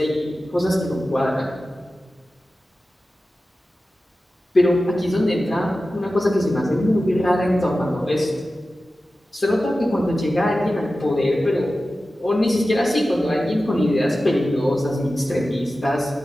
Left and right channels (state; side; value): normal; both; correlation 0.94